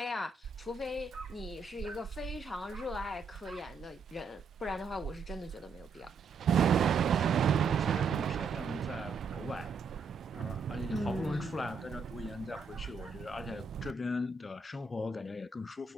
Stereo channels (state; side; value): quieter; left; 4.5 dB